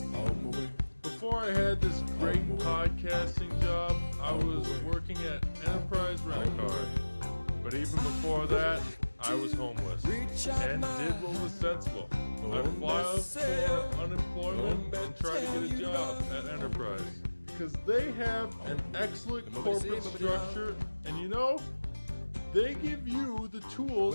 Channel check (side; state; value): both; inverted; correlation -1.00